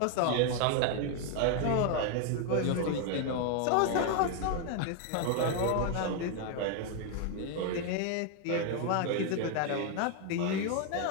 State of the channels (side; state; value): both; different; correlation 0.01